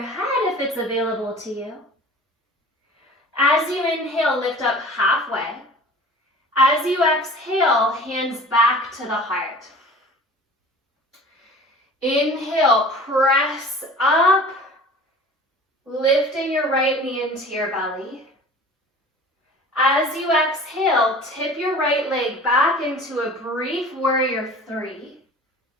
if it's available to you. As you inhale, lift up halfway. As you exhale, hands back to the heart. Inhale, press up, lifting your right knee into your belly. As you exhale, tip your right leg back into a brief warrior 3.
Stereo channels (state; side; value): normal; both; correlation 0.42